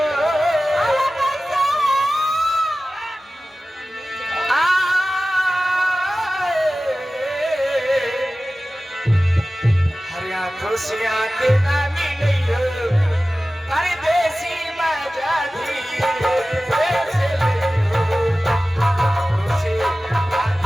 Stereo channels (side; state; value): both; normal; correlation 0.96